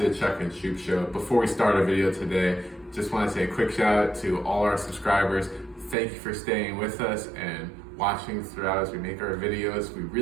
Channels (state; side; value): drops out; left; at 6.0 s